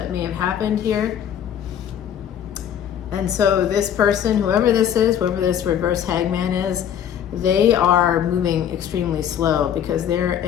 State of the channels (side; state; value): right; quieter; 9.4 dB